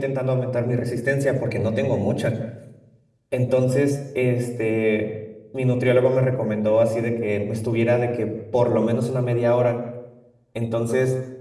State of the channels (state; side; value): identical; both; correlation 1.00